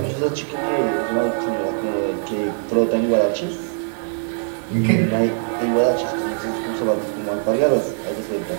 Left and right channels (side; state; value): left; silent; 65 dB below the other